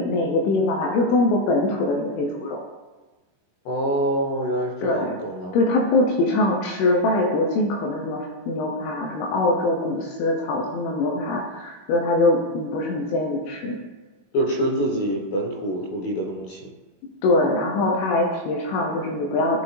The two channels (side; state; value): right; late; 21 ms